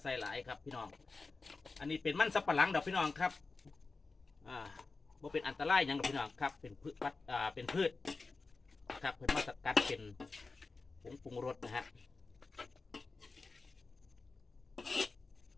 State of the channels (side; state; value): right; quieter; 3.9 dB